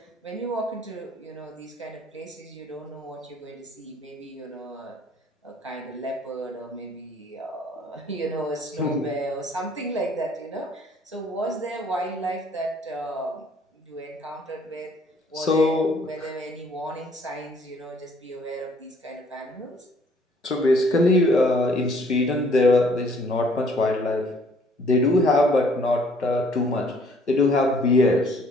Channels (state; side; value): normal; both; correlation 0.60